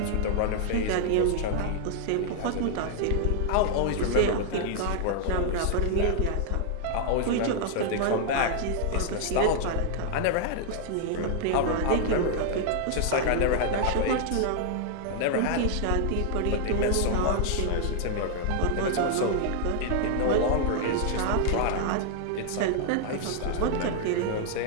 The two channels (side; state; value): both; different; correlation 0.00